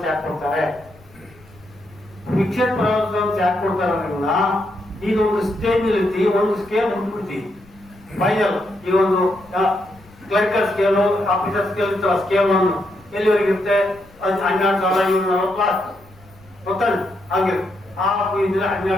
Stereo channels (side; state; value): left; noise; rumble, 26 dB below the sound